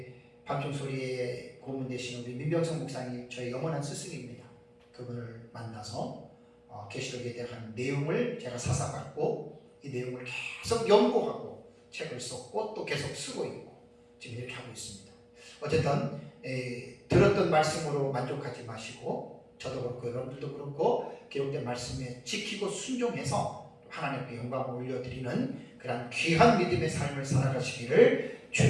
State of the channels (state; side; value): identical; both; correlation 1.00